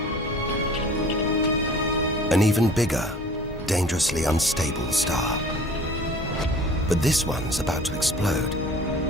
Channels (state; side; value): normal; both; correlation 0.46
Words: An even bigger, dangerously unstable star. But this one's about to explode.